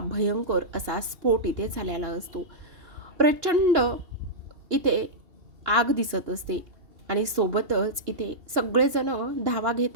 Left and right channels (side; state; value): left; late; 2.9 ms